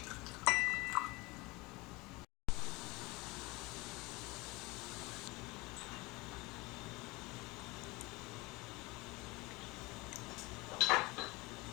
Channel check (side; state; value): right; quieter; 23.6 dB